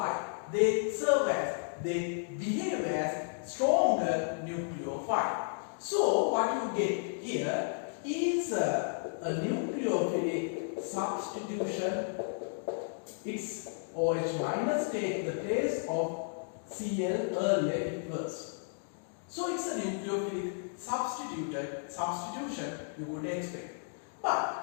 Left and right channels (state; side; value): silent; right; digital silence